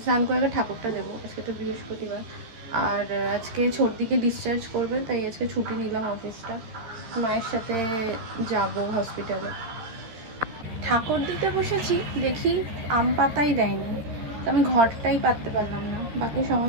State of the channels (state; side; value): late; left; 13 ms